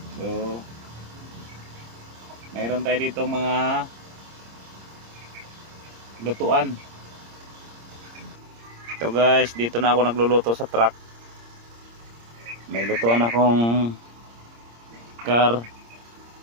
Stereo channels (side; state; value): left; late; 26 ms